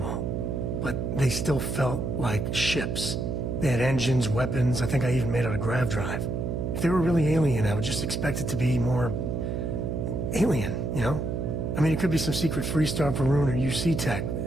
But they still felt like ships. They had engines, weapons, I think I even made out a grav drive. If they were really alien, I would just expect it to be more... alien, you know? I mean, it could be some secret Freestar Varun or UC tech.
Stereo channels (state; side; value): noise; right; hum, 2 dB below the sound